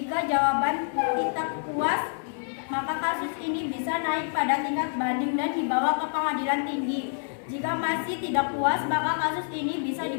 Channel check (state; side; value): silent; right; digital silence